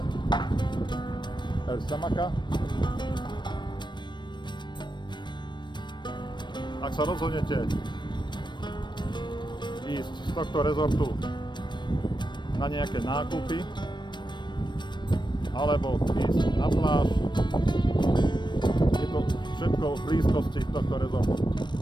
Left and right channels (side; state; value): right; late; 0.22 ms